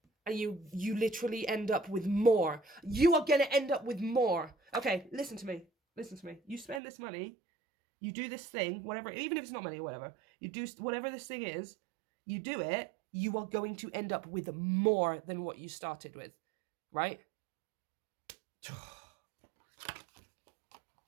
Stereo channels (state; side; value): drops out; left; at 6.8 s